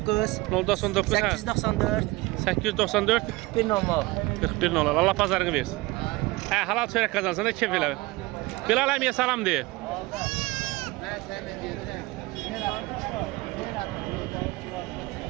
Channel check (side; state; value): left; quieter; 21.7 dB